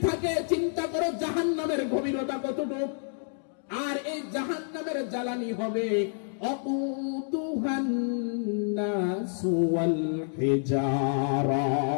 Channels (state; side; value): silent; right; digital silence